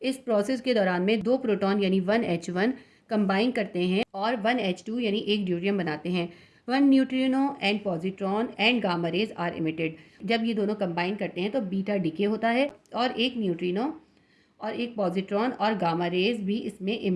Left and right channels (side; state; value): both; identical; correlation 1.00